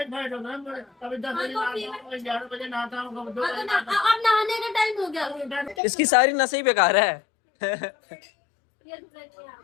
कभी 10 बजे नहाता हूँ, 11 बजे नहाता हूँ, कभी 2 बजे नहाता हूँ। अब नहाने का टाइम हो गया। इसकी सारी नसें ही बेकार है।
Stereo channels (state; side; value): drops out; right; at 5.8 s